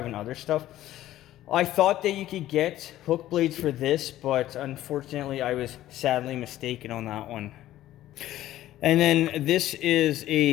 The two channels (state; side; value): quieter; right; 14.0 dB